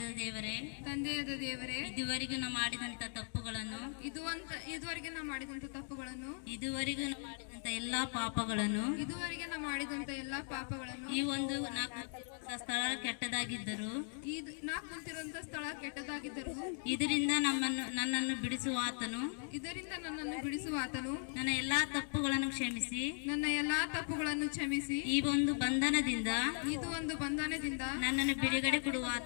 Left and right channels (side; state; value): right; silent; 52 dB below the other